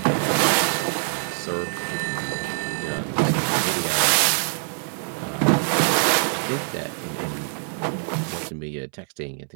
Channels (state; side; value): silent; left; 63 dB below the other